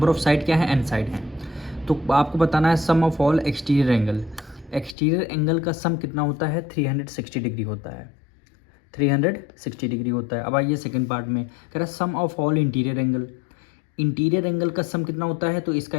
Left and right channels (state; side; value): drops out; right; at 5.0 s